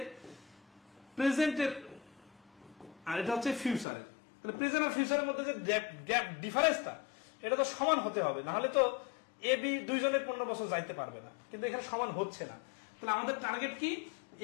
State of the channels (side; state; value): right; drops out; at 3.9 s